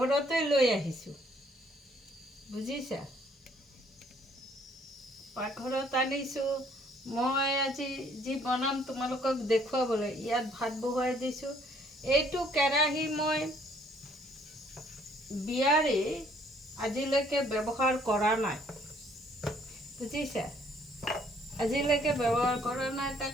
লৈ আহিছোঁ, বুজিছা। পাকঘৰত আনিছোঁ মই আজি যি বনাম তোমালোকক দেখুৱাবলৈ। ইয়াত ভাত বহুৱাই দিছোঁ। এইটো কেৰাহী মই বিয়াৰে আজিলৈকে ব্যৱহাৰ কৰা নাই, বুজিছা। আজিলৈকে ব্যৱহাৰ কৰা নাই,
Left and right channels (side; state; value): both; normal; correlation 0.63